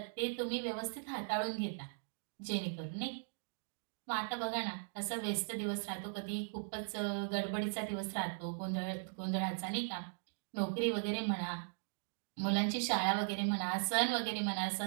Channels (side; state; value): left; silent; digital silence